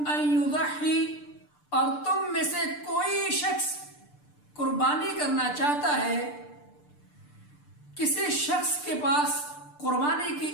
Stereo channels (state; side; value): late; right; 6.8 ms